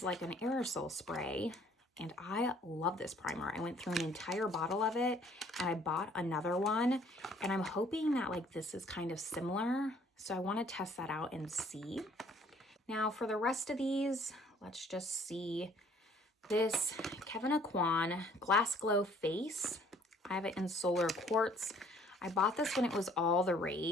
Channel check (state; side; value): normal; both; correlation 0.58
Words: like an aerosol spray, and I love this primer. I went through an entire bottle of it, and I bought another one, and I'm hoping that like this is kind of similar. So I want to test that out and see. Now for the rest of these, let's just see. This Kevin Aquan Glass Glow Face. I have it in Solar Quartz. I bought this when it was all the